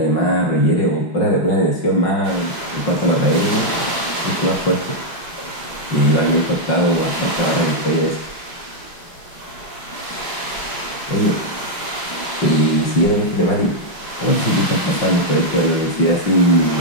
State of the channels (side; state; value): right; late; 5.5 ms